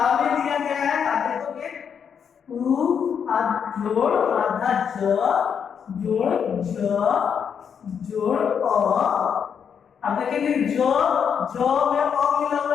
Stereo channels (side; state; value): right; quieter; 7.3 dB